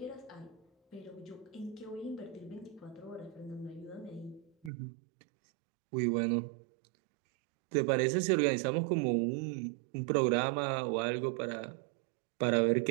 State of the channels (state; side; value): drops out; left; at 4.7 s